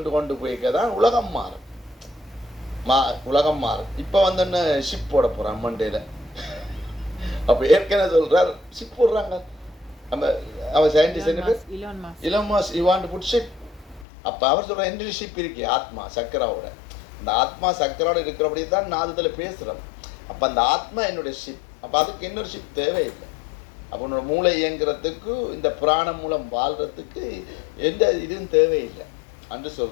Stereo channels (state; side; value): drops out; right; at 14.1 s